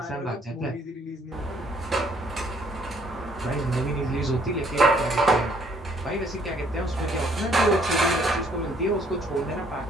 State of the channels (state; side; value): normal; both; correlation 0.64